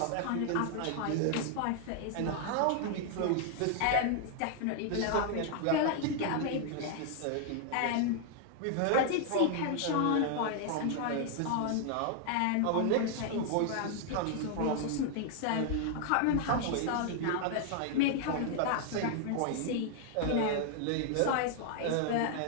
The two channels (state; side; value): different; both; correlation 0.00